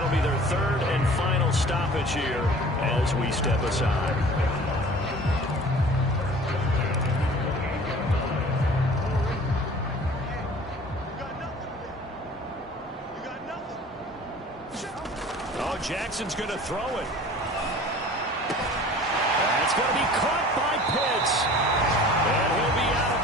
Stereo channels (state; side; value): normal; both; correlation 0.45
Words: be their 3rd and final stoppage here as we step aside. Oh, Jackson's going to throw it. It's going to be caught by Pitts. And he'll be out of